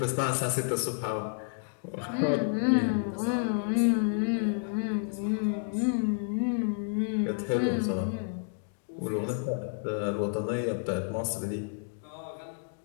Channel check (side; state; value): right; silent; digital silence